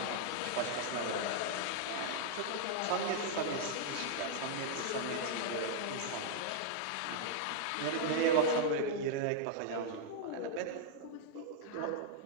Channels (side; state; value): both; different; correlation -0.01